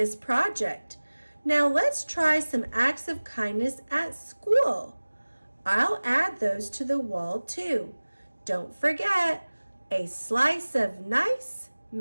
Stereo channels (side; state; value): both; inverted; correlation -1.00